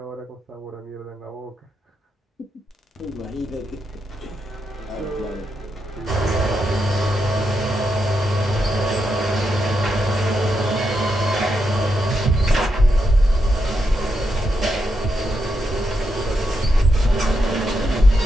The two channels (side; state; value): both; normal; correlation 0.83